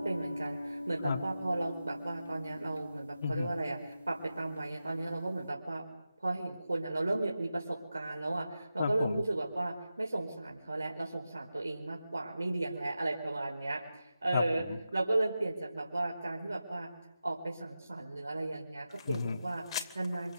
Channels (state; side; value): inverted; both; correlation -0.91